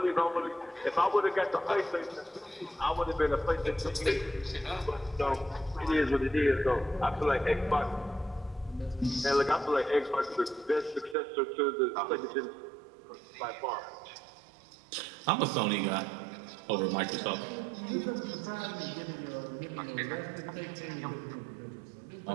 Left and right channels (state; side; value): drops out; left; at 11.2 s